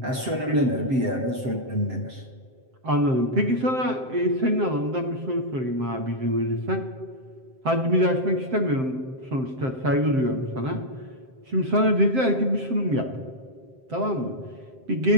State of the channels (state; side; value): late; left; 7.6 ms